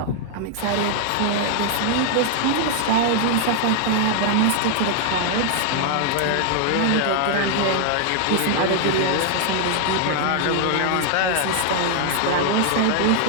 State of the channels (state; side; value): different; both; correlation 0.00